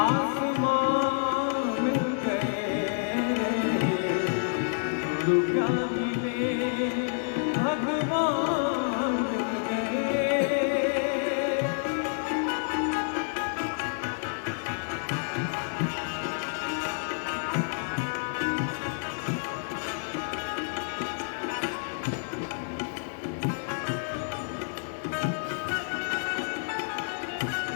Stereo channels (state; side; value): silent; right; 59 dB below the other